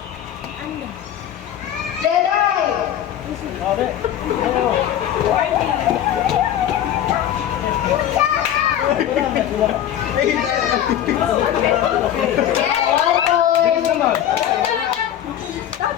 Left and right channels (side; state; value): right; quieter; 10.8 dB